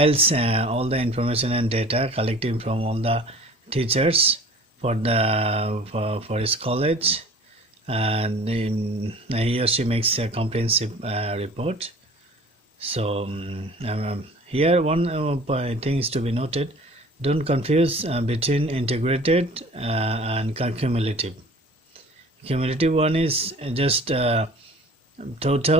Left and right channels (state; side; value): normal; both; correlation 0.45